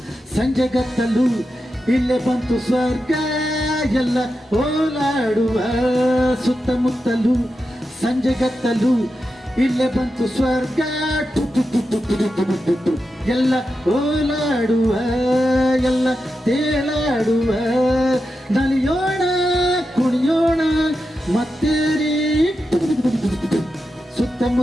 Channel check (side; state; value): both; normal; correlation 0.89